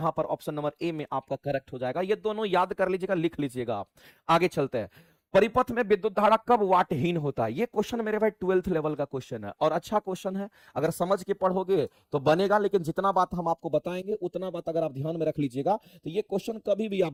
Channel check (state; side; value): identical; both; correlation 1.00